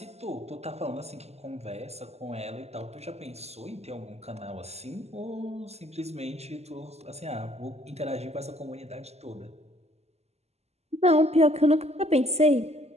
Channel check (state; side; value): late; left; 0.30 ms